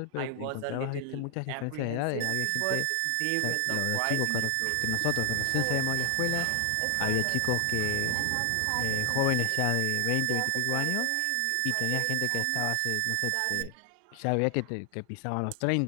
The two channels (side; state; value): both; different; correlation 0.00